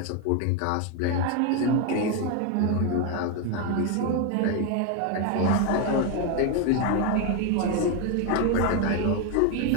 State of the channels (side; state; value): both; different; correlation 0.01